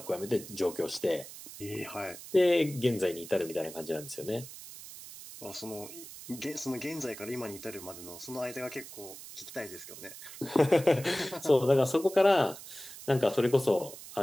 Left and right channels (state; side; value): noise; right; hiss, 14 dB below the sound